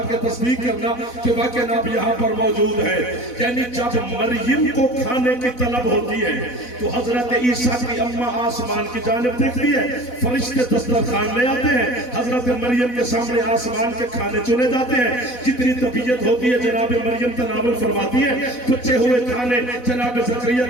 के तस्दीक करना कि वाकई आप यहाँ पर मौजूद है। यानी जब मरियम को खाने की तलब होती है तो हजरत ईसा की अम्मा आसमान की जानिब देखती है, फरिश्ते दस्तरखान ले आते हैं, हजरत मरियम के सामने आसमान के खाने चुने जाते हैं। जितनी तबीयत होती है जनाब मरियम तनावुल फरमाती है, बचे हुए खाने जनाब ज़करिया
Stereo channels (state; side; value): late; right; 4.1 ms